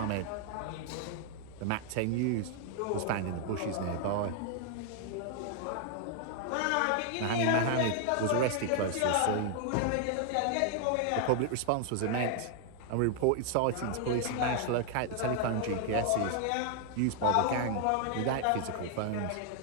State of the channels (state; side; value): different; both; correlation 0.00